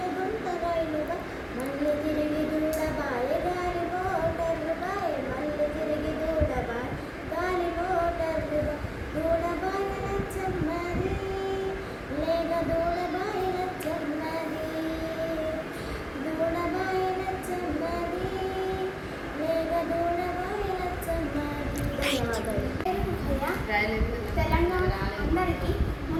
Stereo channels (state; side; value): identical; both; correlation 1.00